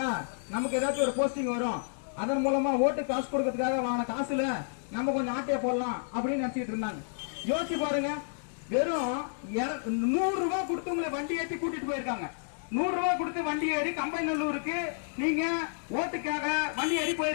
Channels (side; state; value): right; silent; digital silence